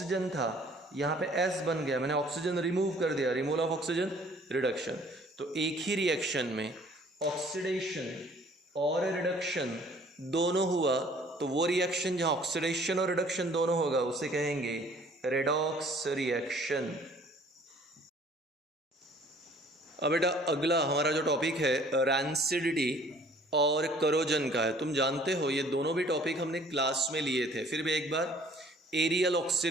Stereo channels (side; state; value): both; normal; correlation 0.55